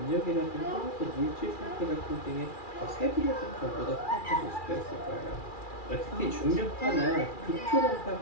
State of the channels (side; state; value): right; late; 2.4 ms